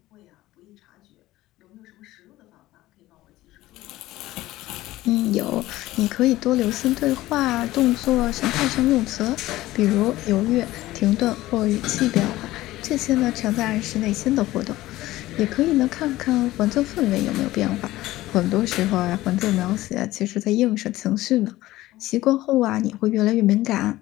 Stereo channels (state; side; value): quieter; right; 16.7 dB